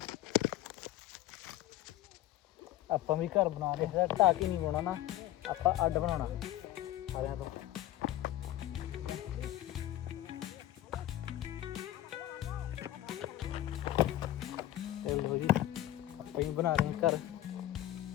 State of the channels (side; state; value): right; quieter; 13.9 dB